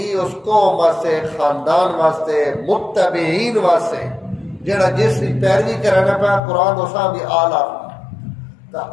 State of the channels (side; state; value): right; drops out; at 6.4 s